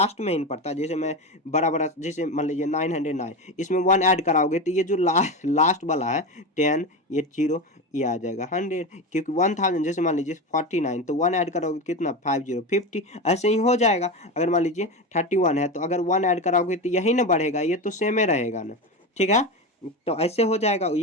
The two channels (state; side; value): normal; both; correlation 0.20